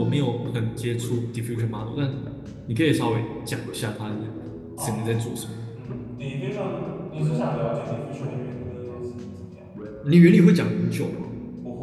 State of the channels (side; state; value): both; identical; correlation 1.00